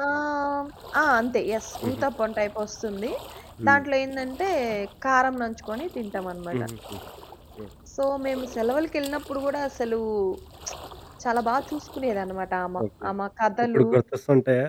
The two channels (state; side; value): identical; both; correlation 1.00